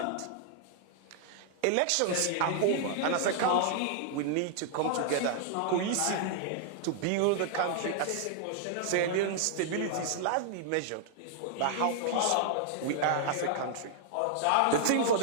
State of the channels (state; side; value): different; both; correlation -0.01